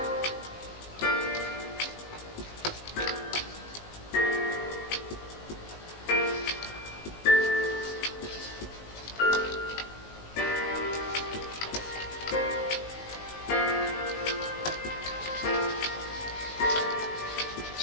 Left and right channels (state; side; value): late; right; 19 ms